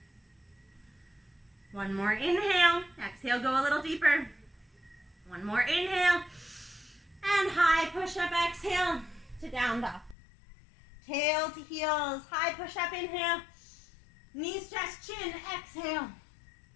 1 more inhale. Exhale, go a little deeper. 1 more inhale. And high push-up, exhale to down dog. Tail to heels, high push-up, inhale. Knees, chest, chin, exhale.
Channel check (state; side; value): drops out; right; at 10.2 s